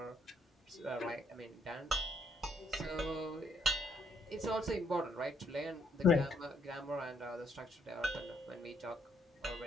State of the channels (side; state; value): both; normal; correlation 0.71